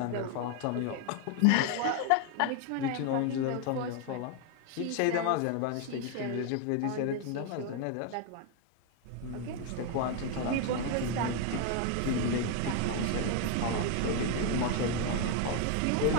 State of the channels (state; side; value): different; both; correlation 0.01